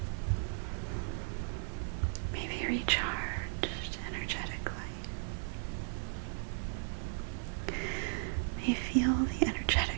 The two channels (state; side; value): silent; left; digital silence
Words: may be recharged energetically, may feel the